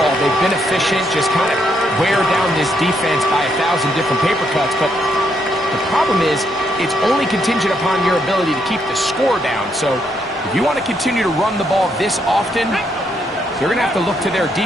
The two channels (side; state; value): both; normal; correlation 0.76